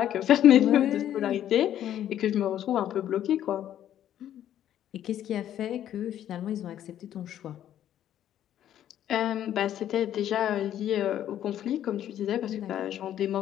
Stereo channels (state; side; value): quieter; right; 11.1 dB